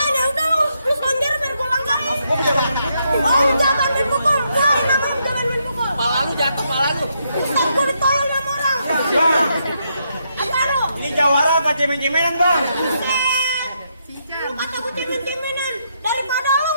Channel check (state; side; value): inverted; both; correlation -0.78